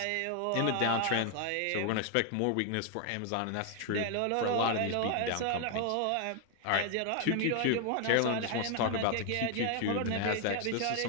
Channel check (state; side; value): different; both; correlation 0.00